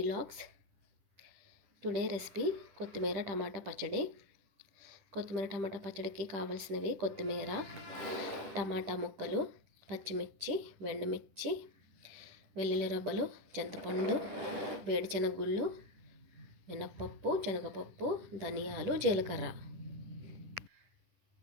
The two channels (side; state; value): left; late; 10 ms